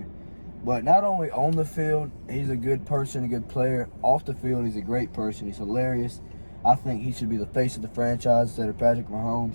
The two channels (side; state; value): both; inverted; correlation -1.00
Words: But not only on the field, he's a good person, a good player. Off the field, he's a great person. He's hilarious. I think he should be the face of the franchise instead of Patrick